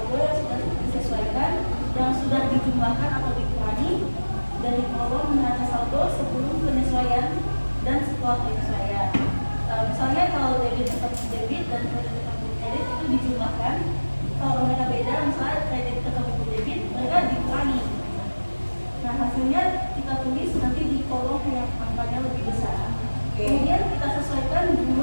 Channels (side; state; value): both; inverted; correlation -1.00